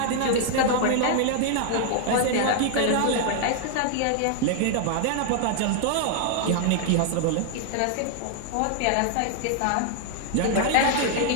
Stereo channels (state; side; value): different; both; correlation -0.01